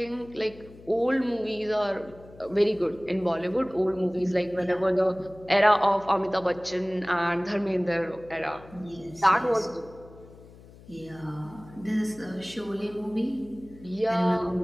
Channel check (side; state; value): left; noise; hum, 21 dB below the sound